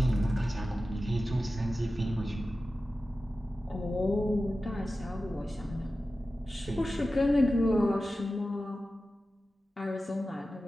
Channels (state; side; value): normal; both; correlation 0.94